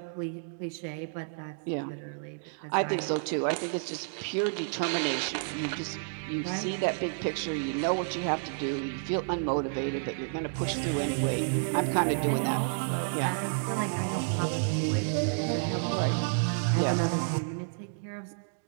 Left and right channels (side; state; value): left; silent; digital silence